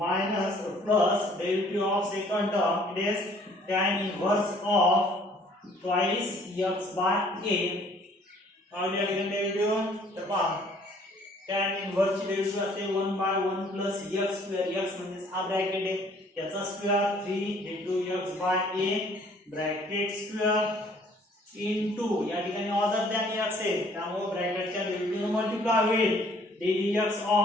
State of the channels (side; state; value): both; normal; correlation 0.58